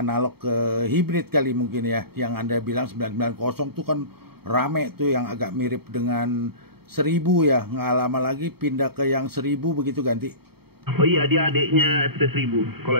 ke hibrid kali mungkin ya, yang Anda bilang 990 tuh kan rame tuh, yang agak mirip dengan 1000 ya, nggak lama lagi pindah ke yang 1000 begitu ganti. Oh iya, dia adiknya FT 1000.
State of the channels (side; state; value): left; late; 0.96 ms